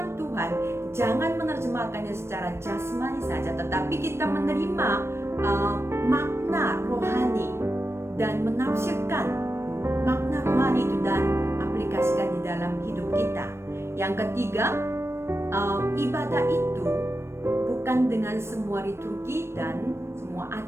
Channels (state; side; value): late; left; 0.13 ms